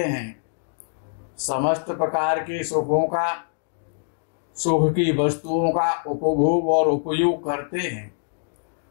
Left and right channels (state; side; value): silent; right; digital silence